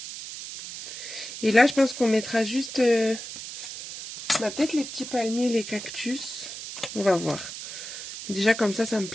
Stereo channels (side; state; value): right; noise; hiss, 10 dB below the sound